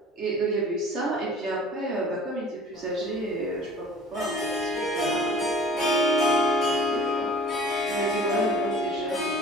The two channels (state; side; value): normal; both; correlation 0.45